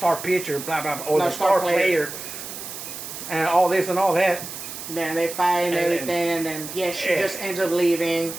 pitcher, blah blah blah, or the star player, and all this and all that. Then they fight and everything, and then she just ends up leaving,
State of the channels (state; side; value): noise; right; hiss, 10 dB below the sound